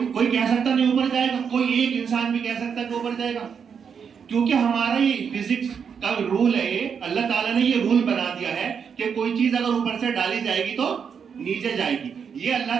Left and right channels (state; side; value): quieter; left; 6.8 dB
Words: کہہ سکتا نہیں اوپر جائے گا، کوئی ایک انسان بھی کہہ سکتا ہے کہ اوپر جائے گا، کیونکہ ہمارا یہ فزکس کا رول ہے. یہ اللہ تعالیٰ نے یہ رول بنا دیا ہے کہ کوئی چیز اگر اوپر سے ڈالی جائے گی تو نیچے جائے گی. یہ اللہ